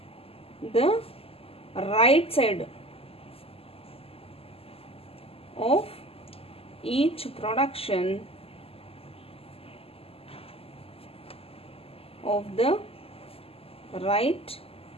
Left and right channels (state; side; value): late; right; 0.28 ms